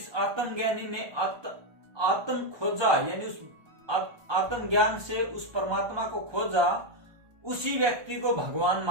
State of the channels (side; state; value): left; late; 1.2 ms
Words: आत्मज्ञानी ने आत्म खोजा यानी उस आत्मज्ञान से उस परमात्मा को खोजा, उसी व्यक्ति को भगवान